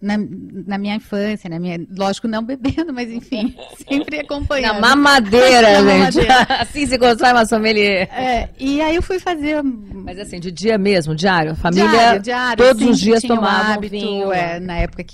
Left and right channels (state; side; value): identical; both; correlation 1.00